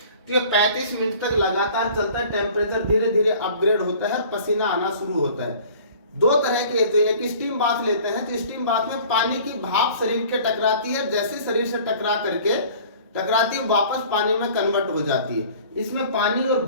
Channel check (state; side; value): inverted; both; correlation -0.48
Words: तो ये 35 मिनट तक लगातार चलता है, टेम्परेचर धीरे धीरे अपग्रेड होता है, पसीना आना शुरू होता है। दो तरह के, तो एक स्टीम बाथ लेते हैं, तो स्टीम बाथ में पानी की भाप शरीर के टकराती है, जैसे शरीर से टकराती है वापस पानी में कन्वर्ट हो जाती है। इसमें पानी और